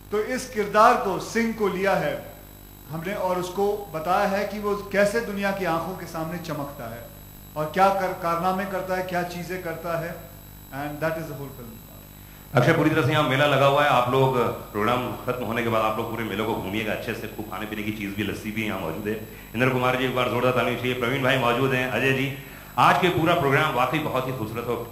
तो इस किरदार को, सिंग को लिया है हमने और उसको बताया है कि वो कैसे दुनिया की आंखों के सामने चमकता है और क्या कारनामे करता है, क्या चीजें करता है, and that is the whole film. Akshay, पूरी तरह से यहाँ मेला लगा हुआ है। आप लोग प्रोग्राम खत्म होने के बाद आप लोग पूरे मेले को घूमिएगा अच्छे से, खूब खाने पीने की चीज भी, लस्सी भी यहाँ मौजूद है। इंद्र कुमार जी एक बार जोरदार ताली चाहिए। प्रवीण भाई मौजूद हैं, अजय जी। आज के पूरा प्रोग्राम वाकई बहुत ही खूबसूरत और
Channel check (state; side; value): identical; both; correlation 1.00